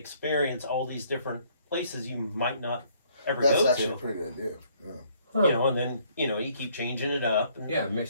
all these different places you might not ever That's go actually to. a pretty good idea. Yeah. Huh. You know, and then you keep changing it up. And, Yeah,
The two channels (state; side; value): inverted; both; correlation -0.65